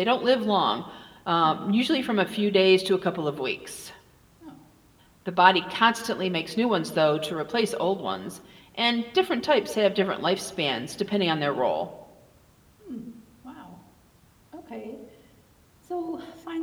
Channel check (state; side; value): identical; both; correlation 1.00